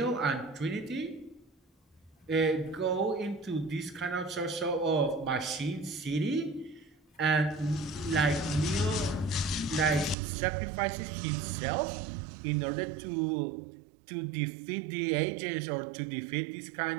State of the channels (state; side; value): drops out; left; at 10.2 s